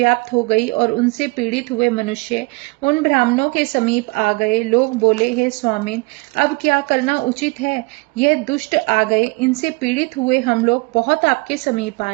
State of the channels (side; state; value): left; quieter; 27.9 dB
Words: हो गई और उनसे पीड़ित हुए मनुष्य उन ब्राह्मणों के समीप आ गए। लोग बोले, हे स्वामिन, अब क्या करना उचित है? यह दुष्ट आ गए, इनसे पीड़ित हुए हम लोग बहुत आपके समीप